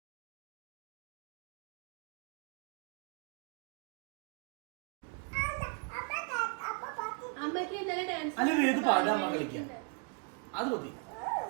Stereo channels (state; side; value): quieter; left; 36.3 dB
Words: അല്ല വേദ് പാടുക, അമ്മ കളിക്കുക. അത് മതി.